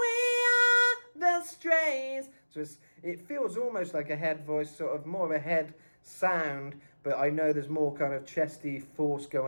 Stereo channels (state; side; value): inverted; both; correlation -1.00